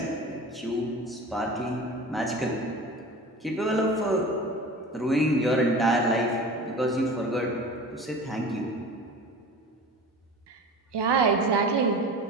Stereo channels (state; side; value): normal; both; correlation 0.37